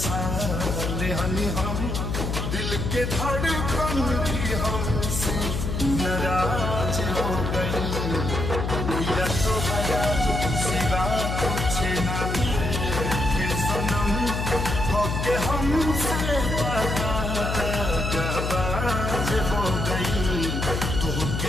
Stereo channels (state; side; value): noise; left; hum, 2 dB below the sound